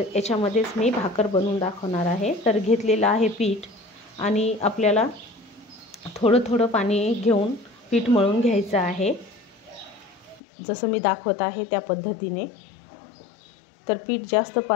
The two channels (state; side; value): drops out; right; at 10.4 s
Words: याच्यामध्येच मी भाकर बनवून दाखवणार आहे. तर घेतलेलं आहे पीठ आणि आपल्याला थोडं थोडं पाणी घेऊन पीठ मळून घ्यायचं आहे, जसं मी दाखवत आहे त्या पद्धतीने. तर पीठ जास्त